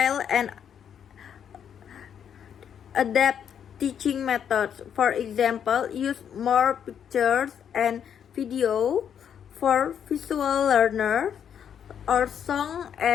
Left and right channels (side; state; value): right; quieter; 8.4 dB